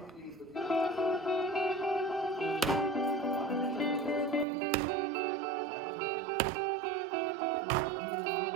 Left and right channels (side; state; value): left; drops out; at 4.5 s